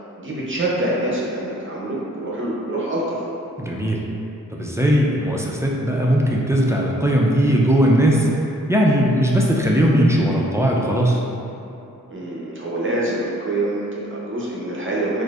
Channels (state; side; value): normal; both; correlation 0.64